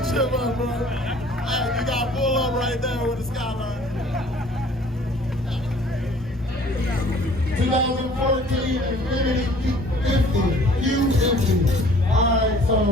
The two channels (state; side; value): normal; both; correlation 0.53